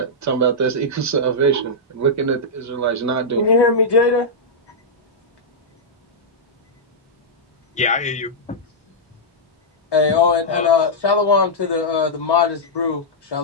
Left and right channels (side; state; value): both; normal; correlation -0.10